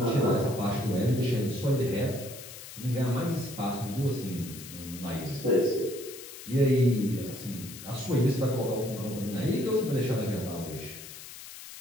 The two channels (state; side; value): noise; left; hiss, 13 dB below the sound